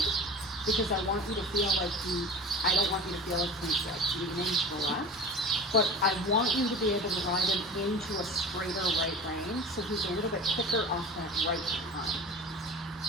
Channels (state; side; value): normal; both; correlation 0.36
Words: because I want you to feel like I don't want you to feel like he's like leaning to the left, but I want you to be able to ride him into a straighter right lane, so he's a little bit quicker off that right behind.